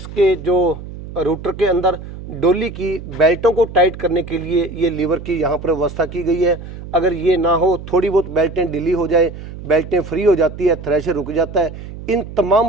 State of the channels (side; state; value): right; noise; hum, 12 dB below the sound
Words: जो रूटर के अंदर डोली की बेल्टों को टाइट करने के लिए ये लीवर की यहाँ पर व्यवस्था की गई है। अगर ये ना हो, थोड़ी बहुत बेल्टें ढीली हो जाए, बेल्टें फ्री हो जाती है, थ्रेशर रुक जाता है। इन